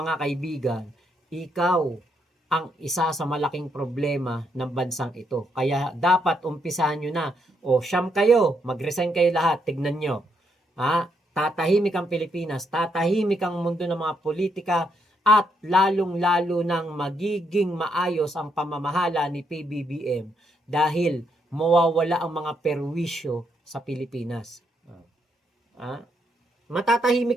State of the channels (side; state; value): both; normal; correlation 0.76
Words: kaibigan, ikaw ang isa sa malaking problema ng bansang ito. Kaya dapat umpisahan nyo na. Siyam kayo, mag-resign kayo lahat, tignan nyo. Tatahimik ang Pilipinas, tatahimik ang mundo ng mga politika, at lalong-lalo nang magiging maayos ang pamamahala ni PBBM dahil mawawala ang mga perwisyo sa Pilipinas.